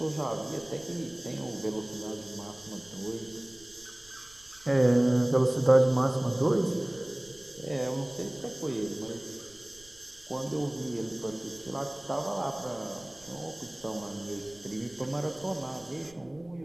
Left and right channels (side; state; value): right; noise; rumble, 26 dB below the sound